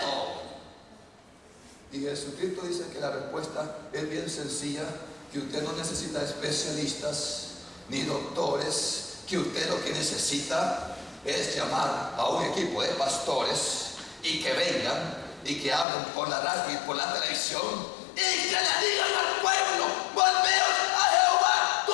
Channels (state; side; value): drops out; right; at 15.9 s